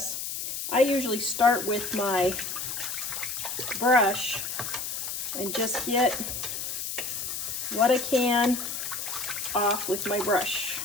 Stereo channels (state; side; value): noise; left; hiss, 4 dB below the sound